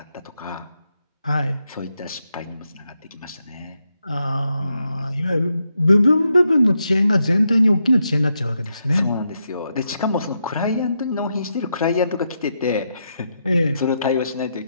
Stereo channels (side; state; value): both; inverted; correlation -0.83